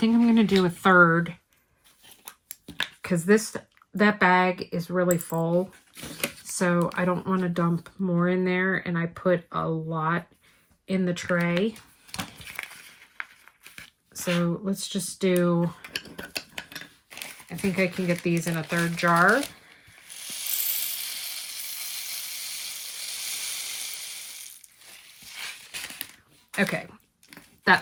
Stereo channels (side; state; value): both; identical; correlation 1.00